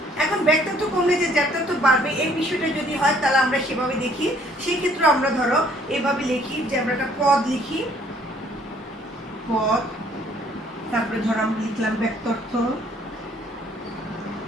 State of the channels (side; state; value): both; normal; correlation 0.61